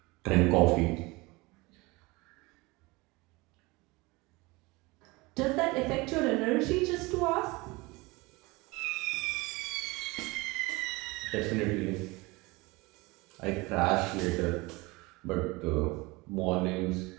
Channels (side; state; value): left; quieter; 23.7 dB